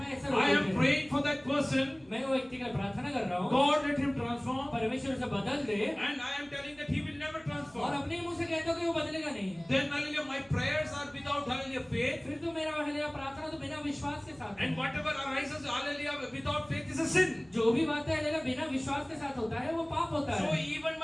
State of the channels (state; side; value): noise; right; hum, 28 dB below the sound